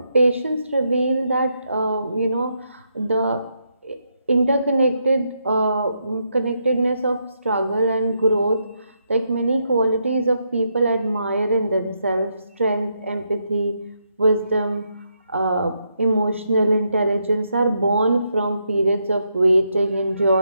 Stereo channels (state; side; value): inverted; both; correlation -0.80